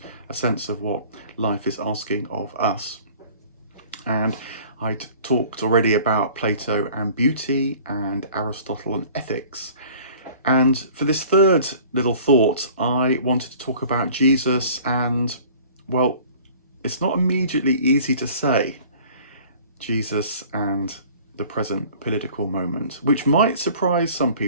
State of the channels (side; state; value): both; inverted; correlation -0.49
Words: a sense of what life is asking of us. And I'd talked already about Plato and beauty and Aristotle and ethics. And for this third little thought, I wanted to talk about Jesus and, well, it's not immediately easy to say Jesus and the present political moment, which might surprise some